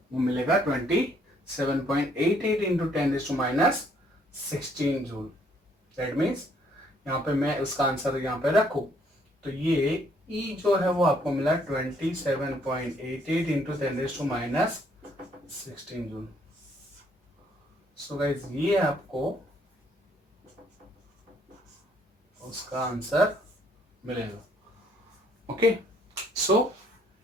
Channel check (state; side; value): normal; both; correlation 0.66